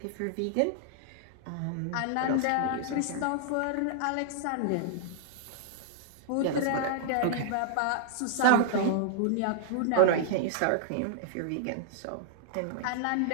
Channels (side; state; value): both; different; correlation -0.01